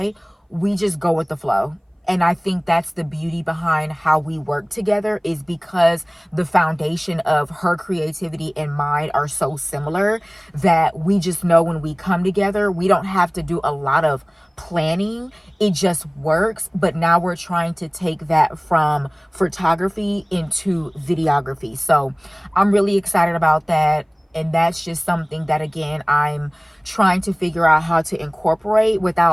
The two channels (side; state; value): both; identical; correlation 1.00